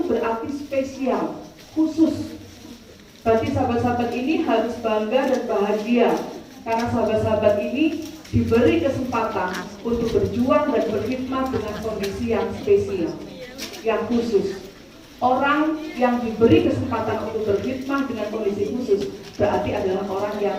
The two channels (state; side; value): identical; both; correlation 1.00